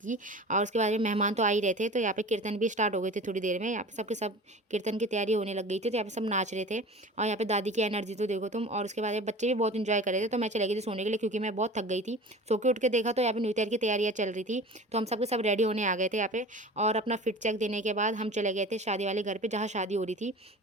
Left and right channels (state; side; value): normal; both; correlation 0.38